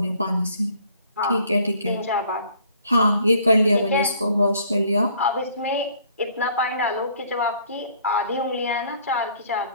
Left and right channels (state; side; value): inverted; both; correlation -0.59